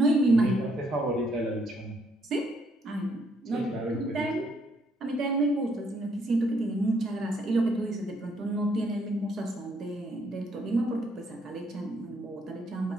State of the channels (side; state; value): both; normal; correlation 0.71